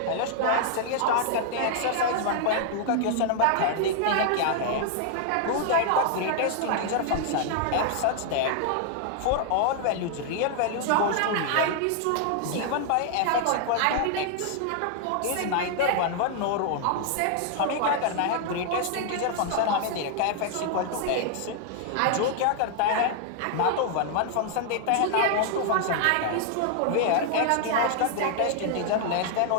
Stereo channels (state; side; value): different; both; correlation 0.00